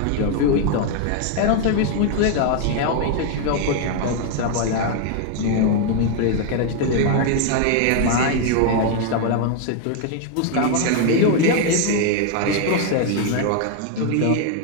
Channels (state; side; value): different; both; correlation 0.01